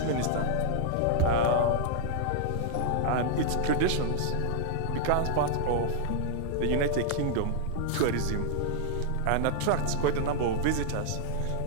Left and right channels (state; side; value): different; both; correlation -0.01